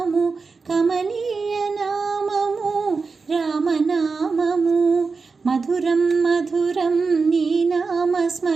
కమనీయ నామము రామనామము మధురం మధురం నీ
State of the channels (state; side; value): quieter; left; 4.5 dB